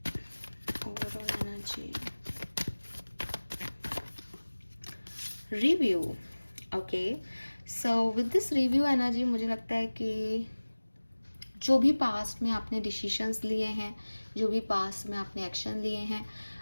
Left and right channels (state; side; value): inverted; both; correlation -1.00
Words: review. Okay, so with this review energy मुझे लगता है कि जो भी past में आपने decisions लिए हैं, जो भी पास्ट में आपने एक्शन लिए हैं,